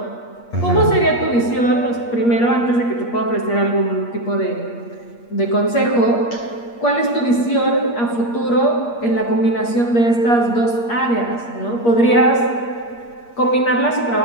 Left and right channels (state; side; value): late; right; 8.5 ms